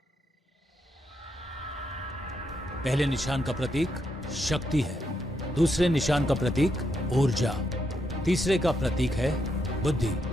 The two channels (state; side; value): normal; both; correlation 0.80